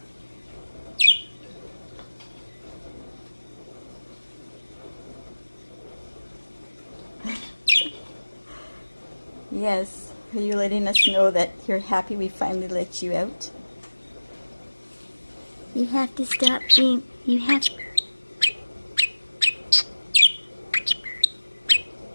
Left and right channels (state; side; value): inverted; both; correlation -1.00